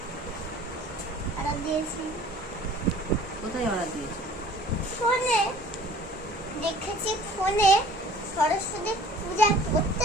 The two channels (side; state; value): both; normal; correlation 0.49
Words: order দিয়েছি। কোথায় অর্ডার দিয়েছো? ফোনে দেখেছি, ফোনে সরস্বতী পূজা